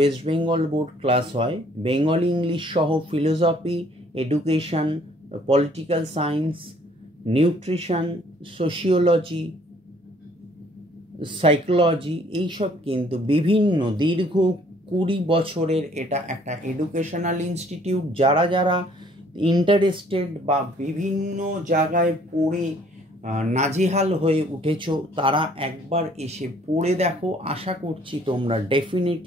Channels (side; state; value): both; normal; correlation 0.60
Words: Bengal board class হয়। বেঙ্গলি ইংলিশ সহ philosophy, education, political science, nutrition, sociology, psychology, এইসব কিন্তু বিভিন্ন দীর্ঘ 20 বছরের এটা একটা এডুকেশনাল ইনস্টিটিউট। যারা যারা ইন্টারেস্টেড বা বিভিন্ন জায়গায় পড়ে নাজেহাল হয়ে উঠেছো তারা একবার এসে পড়ে দেখো। আশা করছি তোমরা